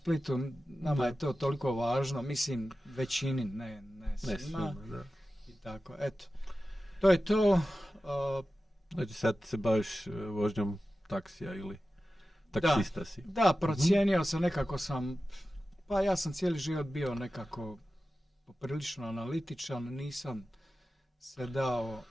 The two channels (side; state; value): both; normal; correlation 0.94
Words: nama je to toliko važno, mislim većini, ne svima. Da. I tako, eto. To je to. Znači sad se baviš vožnjom taksija ili taksista si? Da, procijenio sam, nekako pa ja sam cijeli život bio nekako poprilično analitičan, nisam se dao